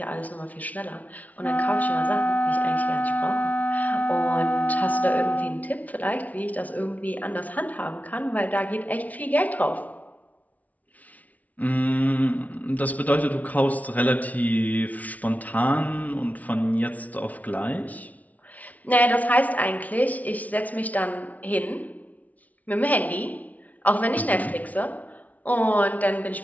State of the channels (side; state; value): right; late; 0.073 ms